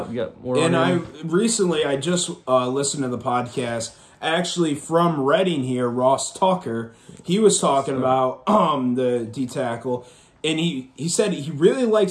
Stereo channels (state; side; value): identical; both; correlation 1.00